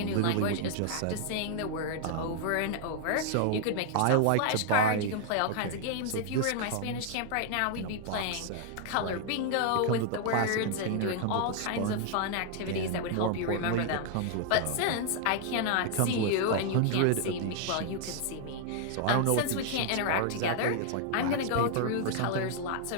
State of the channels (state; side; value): different; both; correlation 0.00